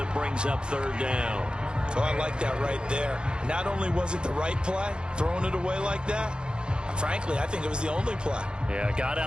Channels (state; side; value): late; left; 0.050 ms